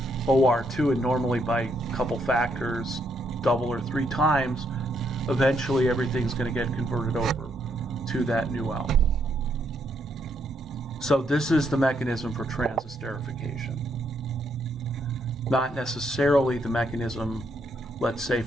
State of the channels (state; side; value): normal; both; correlation 0.75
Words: OR2, and normally by a couple factors, double or three times, eventually everything's going to get converted over to that new alcohol. So this is the mechanism for transesterification. Not necessarily the mechanism, let's say,